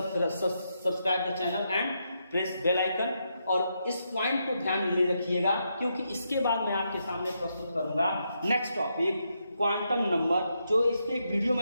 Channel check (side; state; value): both; inverted; correlation -0.81